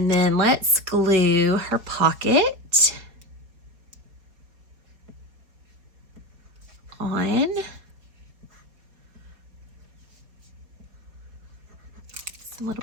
then let's glue her pocket on. Just a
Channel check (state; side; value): late; left; 4.7 ms